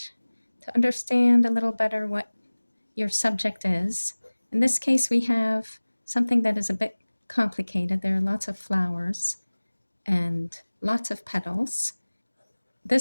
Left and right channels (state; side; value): inverted; both; correlation -1.00